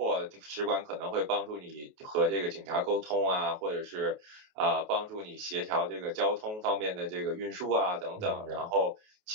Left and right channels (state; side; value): late; left; 28 ms